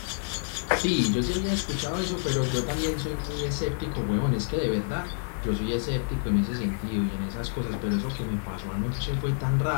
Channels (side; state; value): right; silent; 59 dB below the other